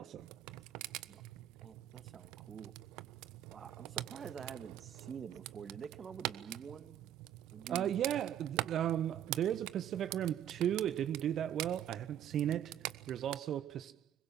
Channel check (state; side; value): quieter; left; 10.6 dB